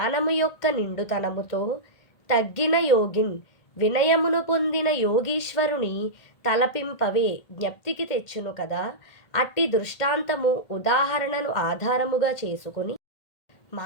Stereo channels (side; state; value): right; late; 2.1 ms